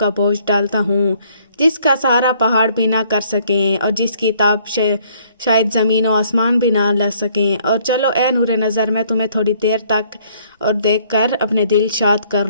بوجھ ڈالتا ہوں، جس کا سہارا پہاڑ بھی نہ کر سکیں اور جس کی تاب شاید زمین و آسمان بھی نہ لے سکیں، اور چلو اے نور نظر، میں تمہیں تھوڑی دیر تک اور دیکھ کر اپنے دل شاد کر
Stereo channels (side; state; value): both; inverted; correlation -0.63